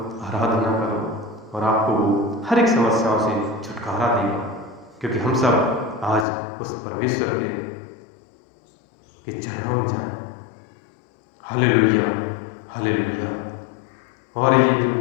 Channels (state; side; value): drops out; right; at 6.2 s